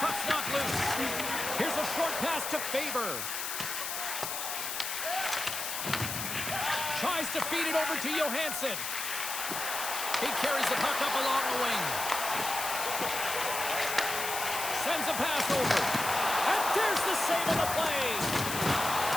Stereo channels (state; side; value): noise; left; hiss, 4 dB below the sound